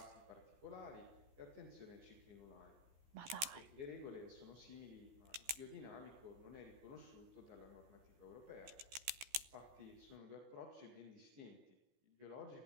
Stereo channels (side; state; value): left; late; 14 ms